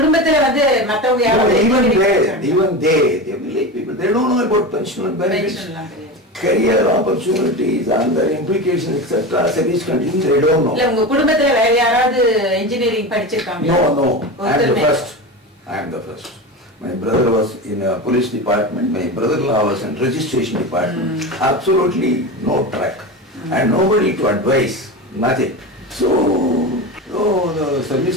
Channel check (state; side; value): normal; both; correlation 0.24